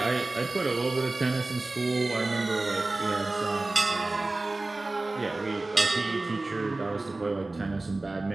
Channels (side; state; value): left; quieter; 3.0 dB